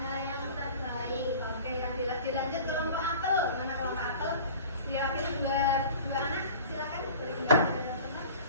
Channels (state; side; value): inverted; both; correlation -0.42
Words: yang terbaik. oke yang dilanjut kelompok apel. Mana kelompok apel? Diwakili dua anak, silakan. Boleh dibantu.